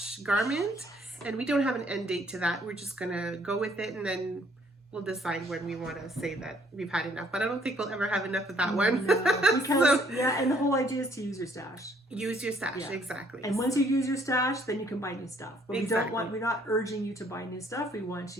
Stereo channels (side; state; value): both; normal; correlation 0.64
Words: garment, and we don't have an end date to that. We're just going to go with it, and then we'll decide when we want to say that we've had enough. But I don't think we'll ever have enough of that one. No, because, and the whole idea is to use your stash. Use your stash, exactly. And once you use your stash, then you can buy new stuff. But exactly. we're not urging you to buy new stuff. We want